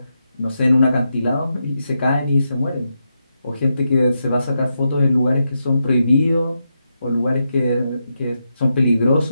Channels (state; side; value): inverted; both; correlation -0.85